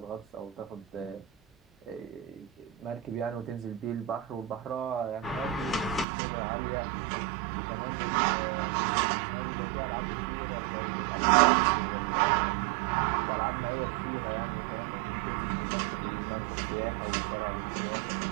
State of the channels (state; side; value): drops out; left; at 6.1 s